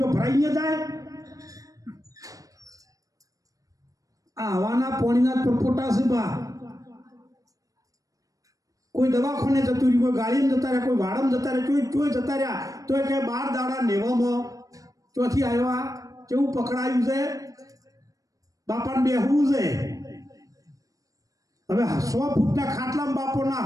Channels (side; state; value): left; late; 0.17 ms